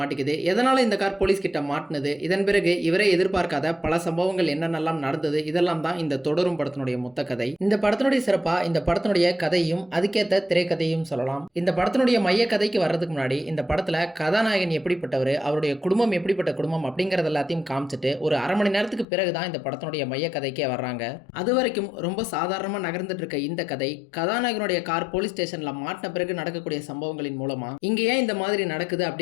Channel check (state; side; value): drops out; right; at 19.1 s